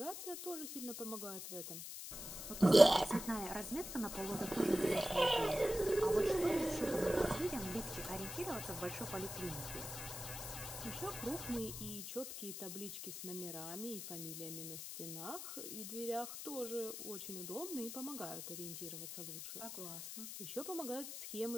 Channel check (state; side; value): noise; left; hiss, 8 dB below the sound